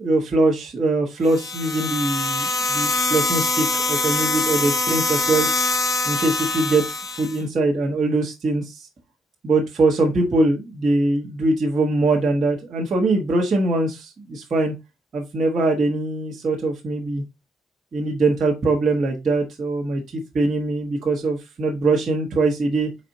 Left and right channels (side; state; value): both; normal; correlation 0.73